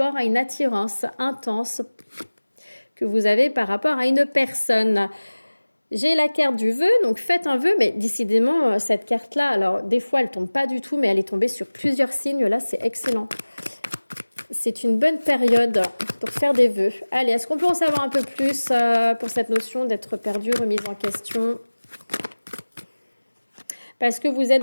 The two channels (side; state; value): both; inverted; correlation -1.00